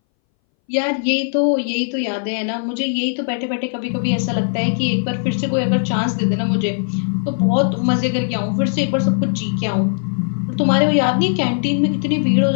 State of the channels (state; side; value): silent; right; 62 dB below the other